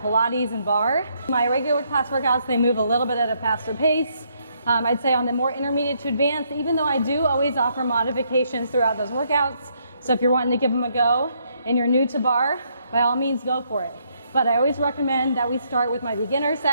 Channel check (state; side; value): inverted; both; correlation -0.73